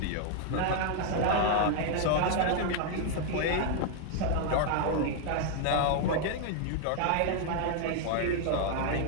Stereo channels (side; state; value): both; different; correlation 0.00